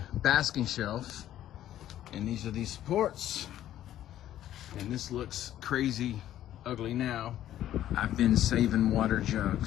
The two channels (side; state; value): right; quieter; 12.3 dB